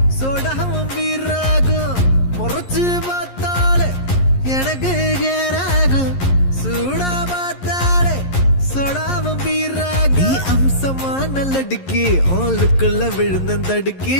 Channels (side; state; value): right; late; 11 ms